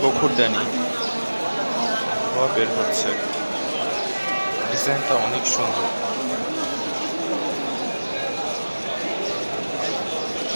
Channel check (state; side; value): inverted; both; correlation -1.00